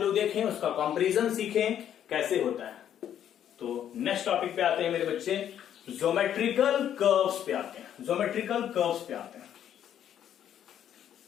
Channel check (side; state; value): right; quieter; 10.1 dB